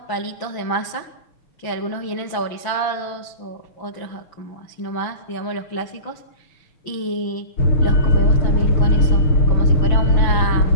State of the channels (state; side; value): late; right; 6.0 ms